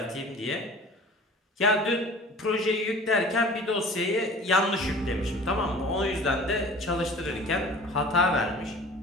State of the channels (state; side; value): normal; both; correlation 0.43